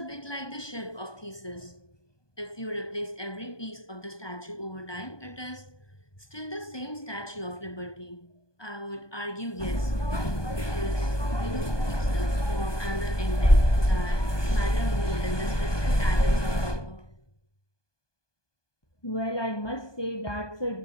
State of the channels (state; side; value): late; right; 1.2 ms